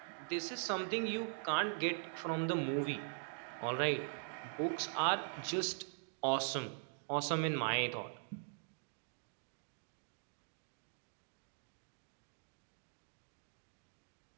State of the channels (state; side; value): silent; left; digital silence